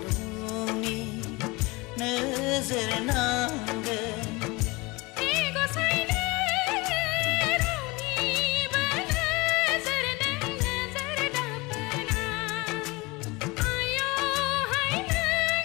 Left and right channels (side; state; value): right; quieter; 24.3 dB